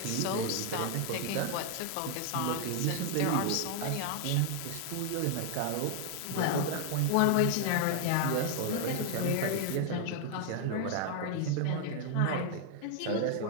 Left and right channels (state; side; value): different; both; correlation 0.00